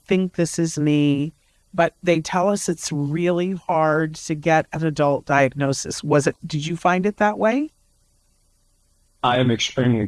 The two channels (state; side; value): identical; both; correlation 1.00